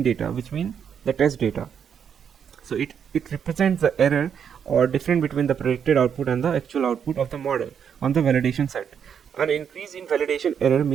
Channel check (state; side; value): quieter; left; 7.7 dB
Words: data, which means the test data. So it represents the error or difference between the predicted output and the actual output of the model on the validation set. An increase in validation error